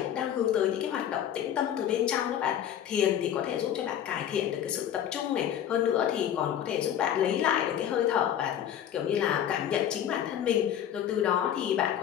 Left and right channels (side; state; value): right; quieter; 10.1 dB